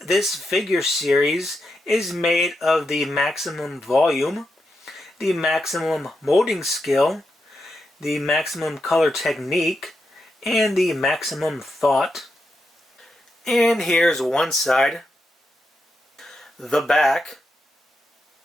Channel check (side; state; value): both; normal; correlation 0.85